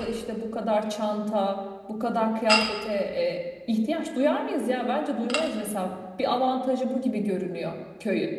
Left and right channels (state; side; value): identical; both; correlation 1.00